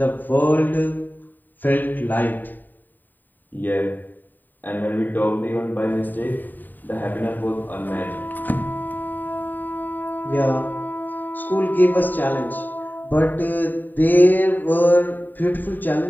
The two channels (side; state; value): right; late; 0.089 ms